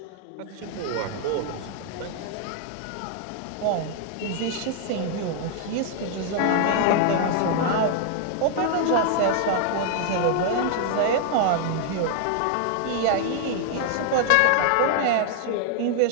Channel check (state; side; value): different; both; correlation 0.00